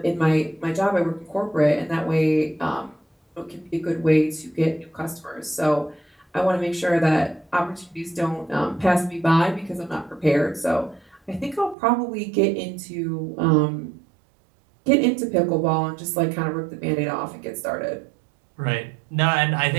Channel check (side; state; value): left; drops out; at 11.8 s